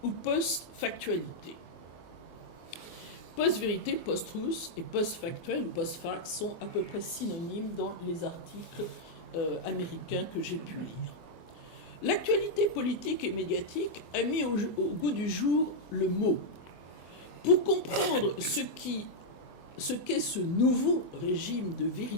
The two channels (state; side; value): late; right; 24 ms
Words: ou post-factualité. Post-vérité, post-truth et post-factuel ou post-fact sont à peu près synonymes dans les articles américains que j'ai pu lire. L'actualité politique et médiatique a mis au goût du jour le mot. Pour comprendre ce qu'est ce nouveau régime de